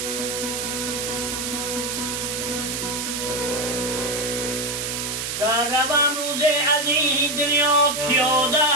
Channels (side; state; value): right; noise; hiss, 3 dB below the sound